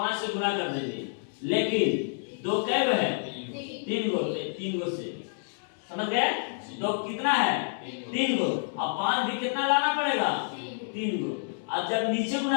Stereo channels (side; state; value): right; silent; digital silence